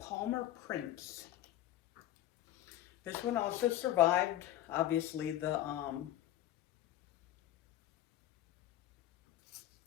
Prince. This one also survived, obviously, the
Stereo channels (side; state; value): right; quieter; 13.5 dB